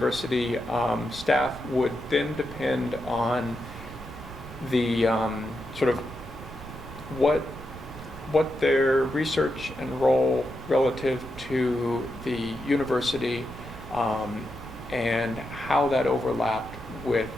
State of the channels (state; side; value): noise; right; rumble, 14 dB below the sound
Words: staff would then depend on the sort of what their research and role relative to the university and how that overlapped with